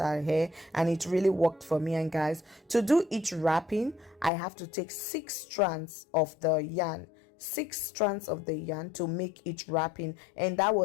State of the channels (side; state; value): right; drops out; at 4.3 s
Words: hair, and it really worked for me. And guys, to do each wrapping, I have to take 6 strands of the yarn, 6 strands of the yarn to make each wrapping, and that